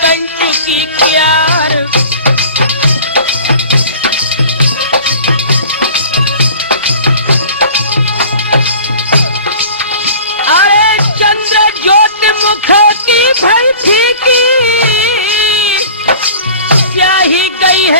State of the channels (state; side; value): inverted; both; correlation -0.43